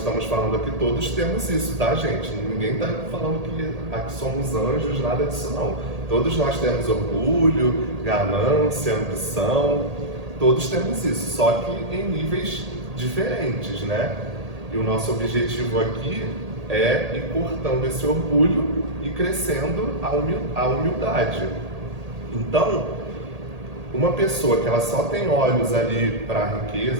falando aqui, todos temos isso, tá, gente? Ninguém está falando que aqui somos anjos, nada disso não. Todos nós temos orgulho, ganância, ambição, todos temos isso, só que em níveis diferentes, né? E o nosso objetivo aqui é ir cortando esse orgulho e crescendo a humildade. Então, uma pessoa que ela só tem olhos ali para a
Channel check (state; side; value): late; left; 1.8 ms